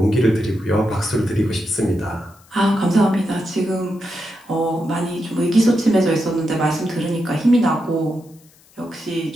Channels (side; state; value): left; noise; hiss, 29 dB below the sound